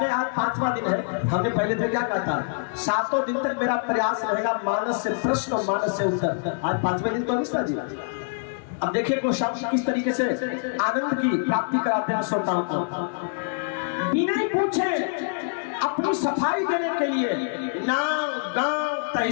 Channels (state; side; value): silent; right; digital silence